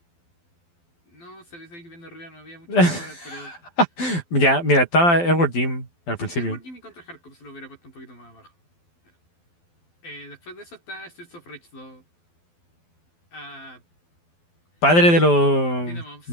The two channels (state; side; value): late; right; 12 ms